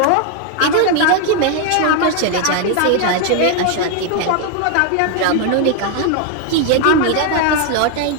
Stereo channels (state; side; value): different; both; correlation 0.00